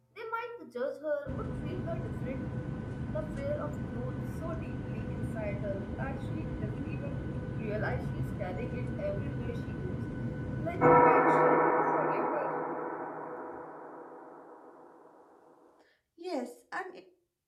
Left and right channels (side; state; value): both; identical; correlation 1.00